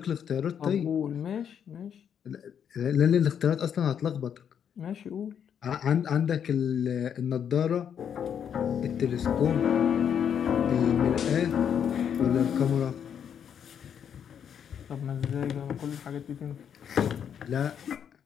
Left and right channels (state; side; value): quieter; right; 8.3 dB